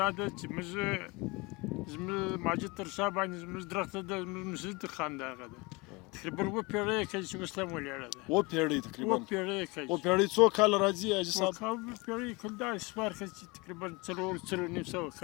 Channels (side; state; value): right; quieter; 25.8 dB